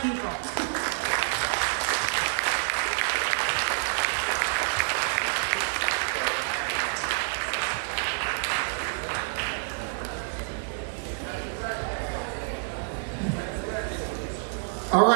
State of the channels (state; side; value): silent; left; digital silence